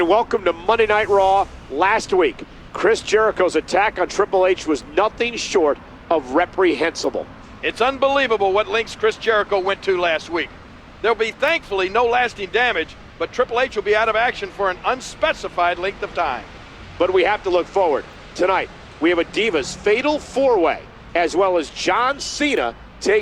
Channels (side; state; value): both; identical; correlation 1.00